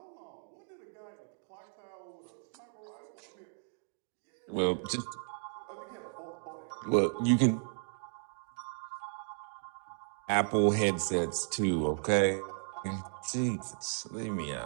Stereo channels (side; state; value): left; silent; 54 dB below the other